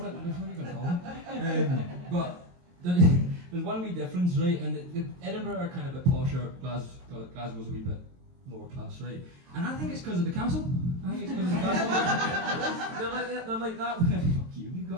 it. What are you going to call it? But there's one wee difference, right? And Edinburgh are kind of a bit posher. Glasgow's a wee bit lower class, right? And I think it's because of the castle. I think it's because of the castle. they're like that. Fuck you, you've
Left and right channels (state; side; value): late; left; 22 ms